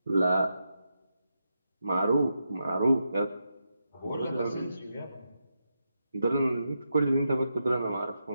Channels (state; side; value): inverted; both; correlation -0.86